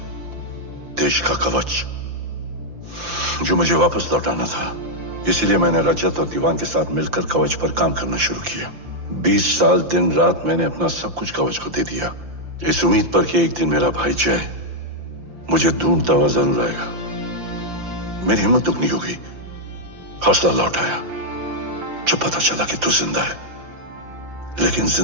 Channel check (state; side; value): late; left; 5.8 ms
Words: देश का कवच जो मुझे वापस लौटाना था। इसीलिए मैंने रजत और दीवान के साथ मिलकर कवच पर काम करना शुरू किया। 20 साल दिन रात मैंने अपना सब कुछ कवच को दे दिया, इस उम्मीद पर कि एक दिन मेरा भाई जय मुझे ढूंढता हुआ जरूर आएगा। मेरी हिम्मत दुगनी हो गई, हौसला लौट आया जब पता चला कि तू जिंदा है। लेकिन